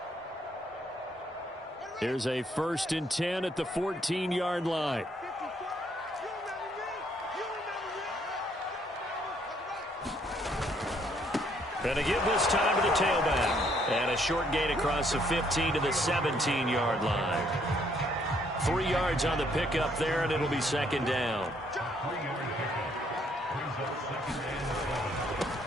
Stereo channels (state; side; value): normal; both; correlation 0.68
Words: Here's a 1st and 10 at the 14-yard line. And to give this time to the tailback. And a short gain across the 15 to the 17-yard line. 3 yards on the pickup there, and it'll be 2nd down.